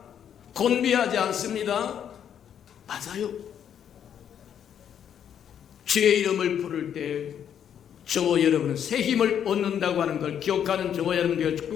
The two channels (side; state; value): right; quieter; 9.0 dB